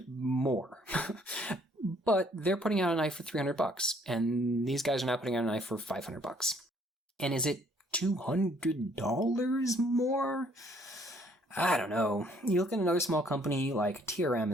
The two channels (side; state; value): both; normal; correlation 0.63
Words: more. But they're putting out a knife for $300, and these guys are now putting out a knife for $500. And is it $200 more? I don't know. You look at another small company like TRM